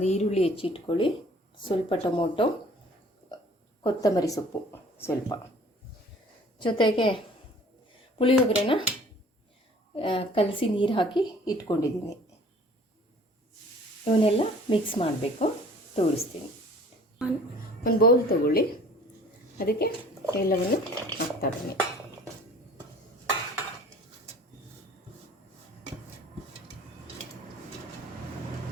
ಈರುಳ್ಳಿ ಹೆಚ್ಚಿಟ್ಕೊಳ್ಳಿ, ಸ್ವಲ್ಪ ಟೊಮೊಟೊ, ಕೊತ್ತಂಬರಿ ಸೊಪ್ಪು ಸ್ವಲ್ಪ, ಜೊತೆಗೆ ಪುಳಿಯೋಗರೆನ ಕಲಸಿ ನೀರು ಹಾಕಿ ಇಟ್ಕೊಂಡಿದ್ದೀನಿ. ಇವನ್ನೆಲ್ಲ ಮಿಕ್ಸ್ ಮಾಡಬೇಕು, ತೋರಿಸ್ತೀನಿ. ಒಂದು ಬೌಲ್ ತಗೊಳ್ಳಿ, ಅದಕ್ಕೆ ಎಲ್ಲವನ್ನು ಹಾಕ್ತಾ ಬನ್ನಿ.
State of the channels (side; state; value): both; normal; correlation 0.51